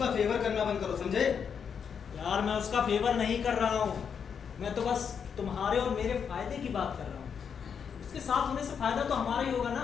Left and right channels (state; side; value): quieter; right; 7.0 dB